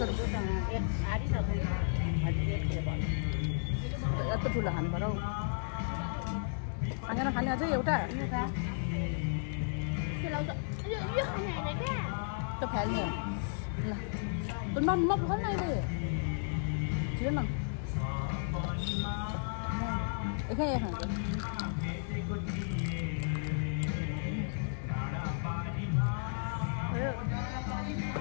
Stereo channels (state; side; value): silent; right; digital silence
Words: यत्रो ठुलो खानु पर्यो खाना खाने अझै एउटा त्यो फाल्ने ल म खोल्न अहिले छिटो न एकै खान्छ